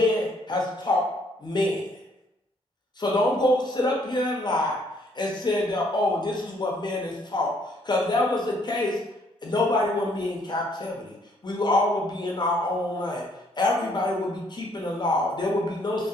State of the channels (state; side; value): normal; both; correlation 0.66